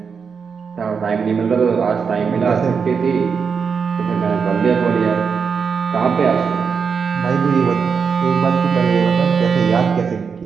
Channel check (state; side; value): quieter; left; 5.9 dB